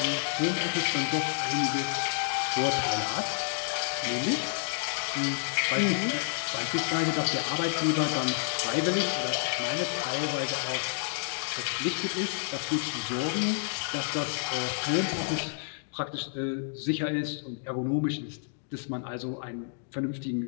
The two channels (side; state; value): right; silent; digital silence